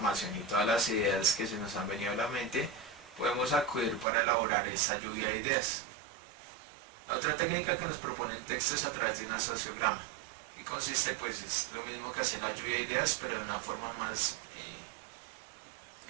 y todas las ideas que se nos han venido a la mente. Podemos acudir para elaborar esa lluvia de ideas. La otra técnica que nos propone el texto es a través de un sociograma, y consiste es lo mismo que hacer la lluvia de ideas, pero de una forma más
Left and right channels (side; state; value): left; drops out; at 4.0 s